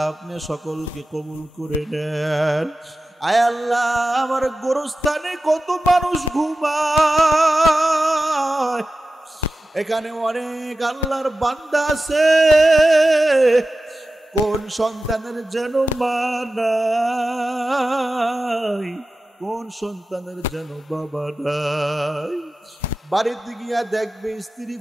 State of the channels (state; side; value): normal; both; correlation 0.94